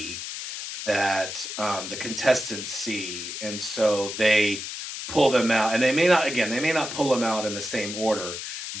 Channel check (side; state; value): left; noise; hiss, 7 dB below the sound